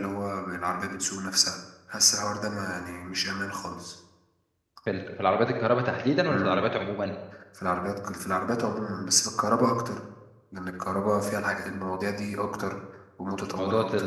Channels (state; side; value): identical; both; correlation 1.00